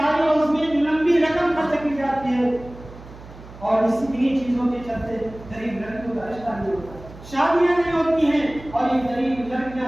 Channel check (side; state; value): right; noise; hum, 18 dB below the sound